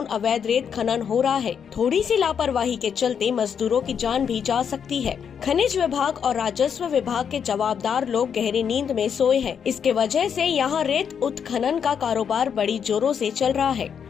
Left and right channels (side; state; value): right; quieter; 7.4 dB